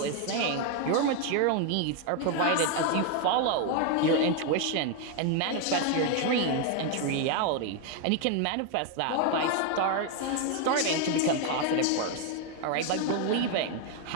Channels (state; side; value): different; both; correlation 0.01